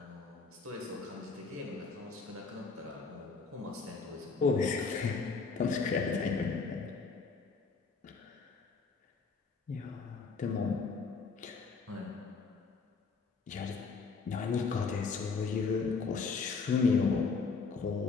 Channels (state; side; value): quieter; right; 4.7 dB